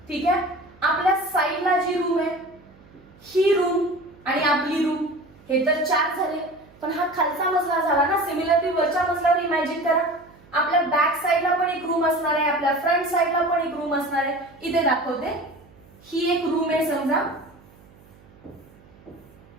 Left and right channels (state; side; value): noise; right; hum, 26 dB below the sound